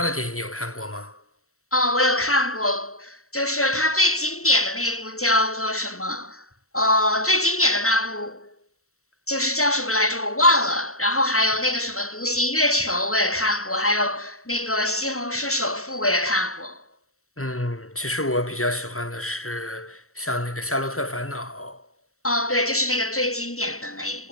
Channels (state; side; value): late; right; 0.64 ms